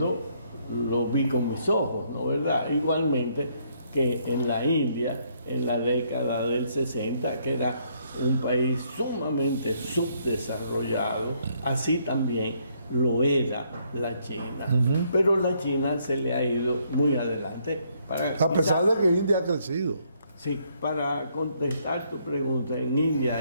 lo vi con mis ojos, ¿no verdad? Igualmente que en la India, en la década del 60, que era un país sumamente subdesarrollado, así también lo era la China. Pero la China se le ha ido muy adelante. A pesar de que India ha crecido. Sí, para contestar tu pregunta, en India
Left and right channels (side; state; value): both; inverted; correlation -0.70